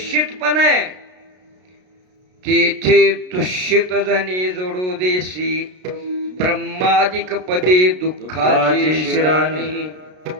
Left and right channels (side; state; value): left; late; 33 ms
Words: पण आहे. तेथे दुष्यित जणी जोडू देशी. ब्रह्मादिक पदे दुःखाची शिराणी.